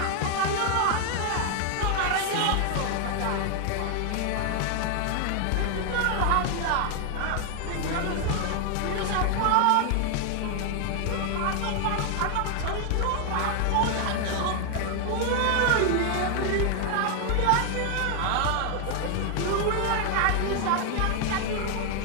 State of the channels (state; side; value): different; both; correlation 0.00